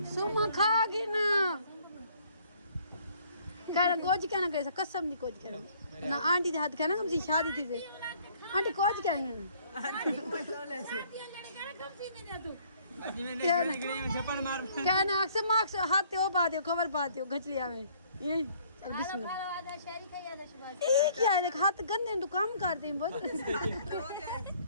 सुमा खा गई ना कहना कोच कहना कैसा कसम नहीं कोच कहना ना आंटी के हाथ कहना कम सी शादी थी से आंटी कोच कहना अजी मैं निकली हूं छप्पड़ मार कहना अक्सर मार्क्स हाथ ओ बात कवर पाते हो घचलिया में ये चल बिस्मिल्लाह आधा शहरी का आधा शबाज ये क्या है देख हाथ गंदे तो काम करते हैं बहुत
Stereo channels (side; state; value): both; inverted; correlation -0.60